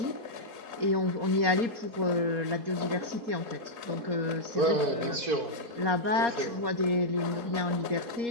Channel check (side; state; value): left; late; 4.2 ms